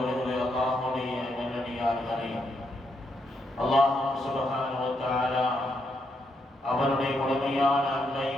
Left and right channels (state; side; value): normal; both; correlation 0.79